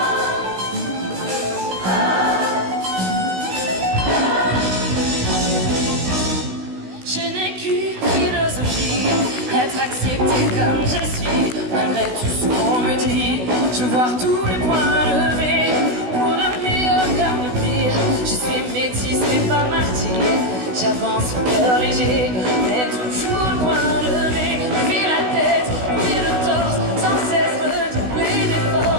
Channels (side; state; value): left; late; 16 ms